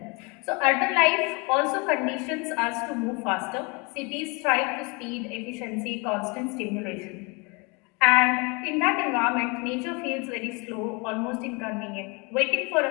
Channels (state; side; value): quieter; right; 29.7 dB